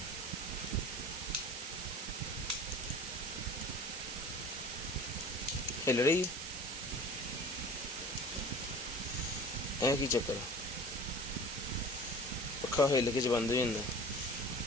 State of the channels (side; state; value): right; noise; hiss, 6 dB below the sound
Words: हिल रही है की चक्कर, पक्का हिल के बंद हो जाता।